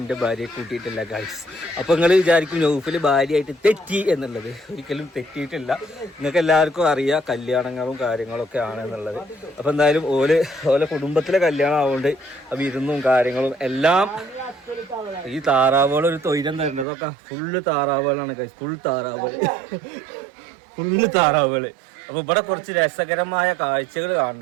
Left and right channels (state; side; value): drops out; left; at 16.9 s